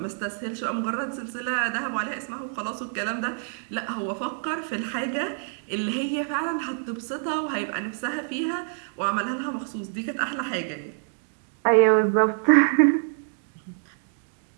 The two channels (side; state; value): left; silent; digital silence